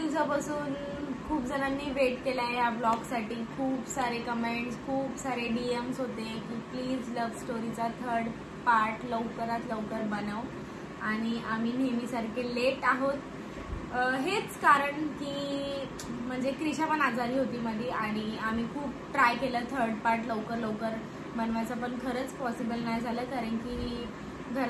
खूप जणांनी वेट केलाय या ब्लॉग साठी. खूप सारे कमेंट्स, खूप सारे डीएम्स होते की प्लीज लव्ह स्टोरीचा 3rd पार्ट लवकरात लवकर बनव. आणि आम्ही नेहमीसारखे लेट आहोत. हेच कारण की म्हणजे क्रिशा पण आजारी होती मध्ये आणि आम्ही खूप ट्राय केलं 3rd पार्ट लवकर बनवायचं, पण खरंच पॉसिबल नाही झालं. कारण की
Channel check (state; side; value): identical; both; correlation 1.00